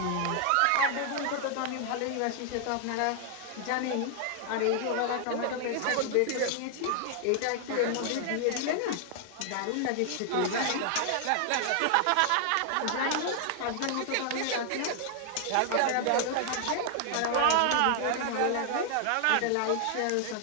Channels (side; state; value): both; different; correlation 0.00